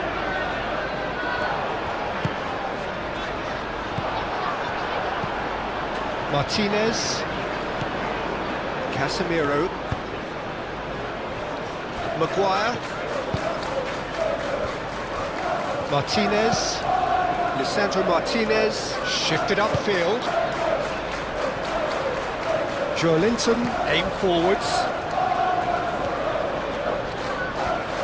Martinez. Casemiro, Maguire, Martinez, Lisandro Martinez, shifted upfield. Joelinton, aim forwards.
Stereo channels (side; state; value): both; identical; correlation 1.00